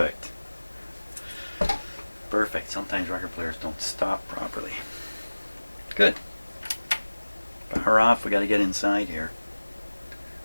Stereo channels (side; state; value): both; inverted; correlation -1.00